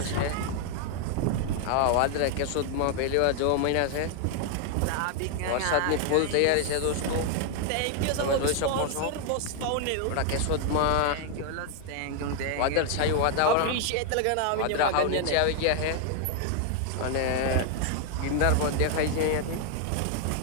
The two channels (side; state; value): both; different; correlation 0.00